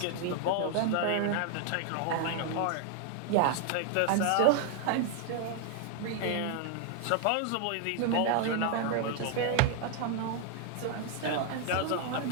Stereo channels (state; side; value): different; both; correlation 0.00